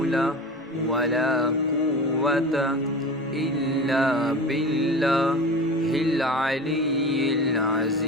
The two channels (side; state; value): both; normal; correlation 0.33